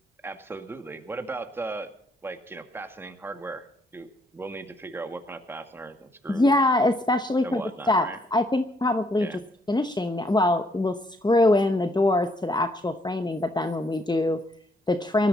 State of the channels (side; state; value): both; normal; correlation 0.70